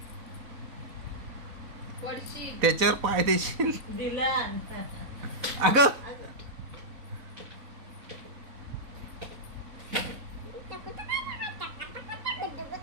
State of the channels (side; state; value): left; late; 4.0 ms